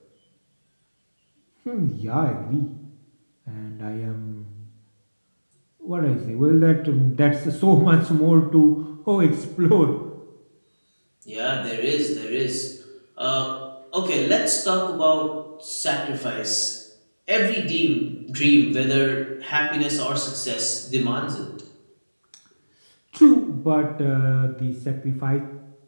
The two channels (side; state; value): both; inverted; correlation -1.00